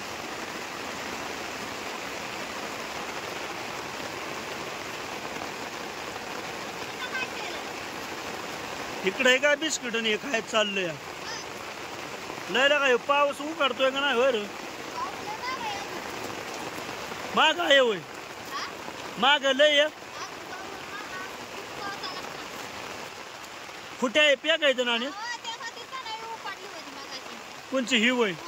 इकडे काय बिस्किट आणि काय चाललंय? लय काय पाऊस उघडतोय का नाही? वर माग आहे होय, माग लय कुठे आहे पेकायचं ना? कोणची ही होय?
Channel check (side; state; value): both; identical; correlation 1.00